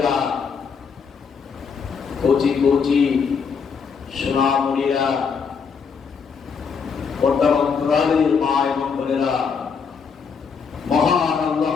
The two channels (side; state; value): right; quieter; 5.9 dB